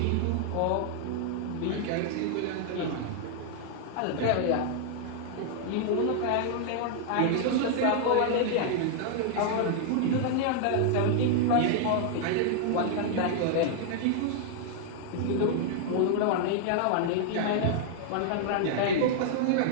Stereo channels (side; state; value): both; different; correlation -0.01